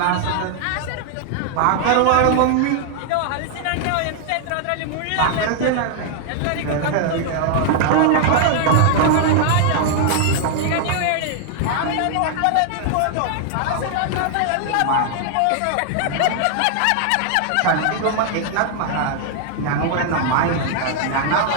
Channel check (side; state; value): both; different; correlation 0.00